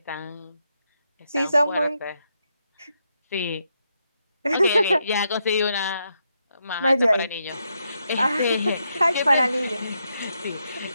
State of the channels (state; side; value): inverted; both; correlation -0.81